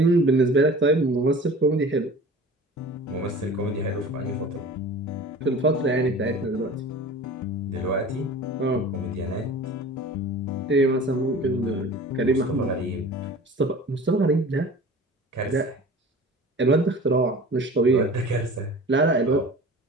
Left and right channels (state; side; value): normal; both; correlation 0.41